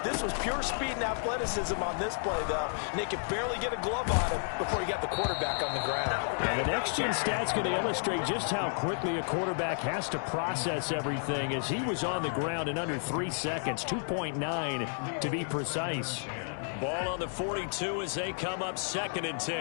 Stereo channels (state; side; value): silent; right; 57 dB below the other